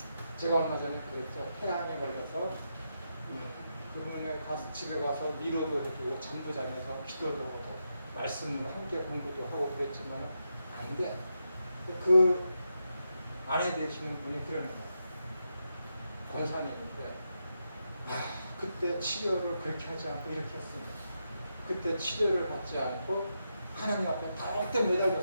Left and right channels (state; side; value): inverted; both; correlation -0.85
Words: 제가 얼마 전에 그랬죠. 폐암에 걸려서 그분에 가서 집에 가서 위로도 해주고 잠도 자면서 기도도 하고 말씀을 함께 공부도 하고 그랬지만 아닌데 그 아내 되시는 분이 그러는 거예요. 권사님인데 그때 치료를 그렇게 하지 않고 이렇게 했습니다. 그때 치료를 받지 않고 하나님 앞에 더욱더